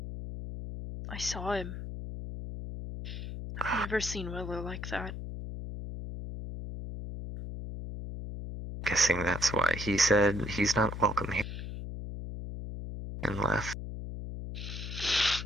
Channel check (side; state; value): left; noise; hum, 7 dB below the sound